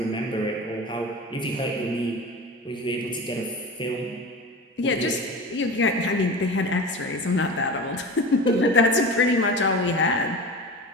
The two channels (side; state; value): both; normal; correlation 0.31